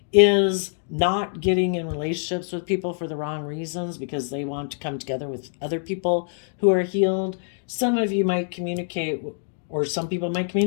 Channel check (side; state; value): right; silent; 62 dB below the other